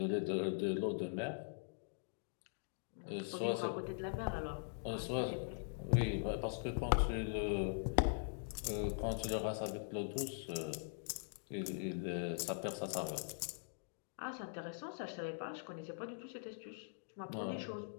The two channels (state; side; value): silent; right; digital silence